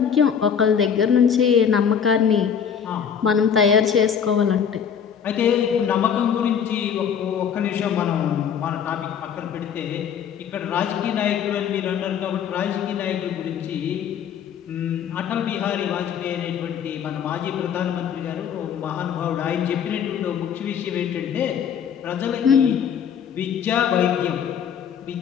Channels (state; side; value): quieter; right; 7.8 dB